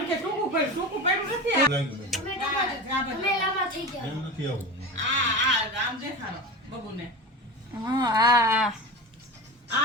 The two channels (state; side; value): normal; both; correlation 0.27